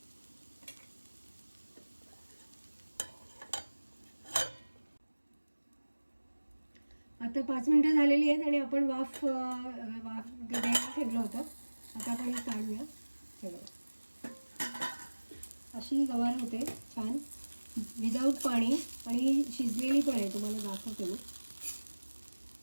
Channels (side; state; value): both; inverted; correlation -1.00